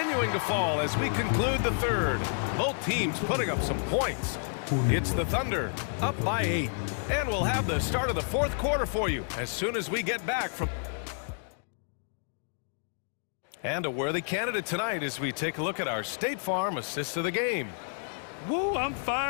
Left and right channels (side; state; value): right; silent; digital silence